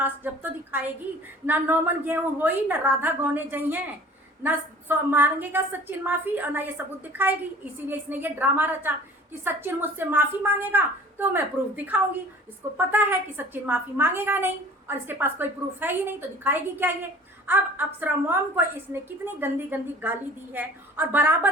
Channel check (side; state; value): both; normal; correlation 0.47